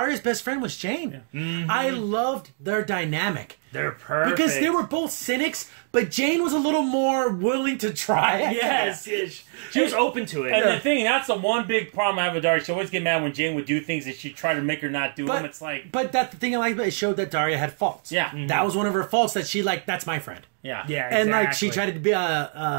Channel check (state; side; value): silent; left; 58 dB below the other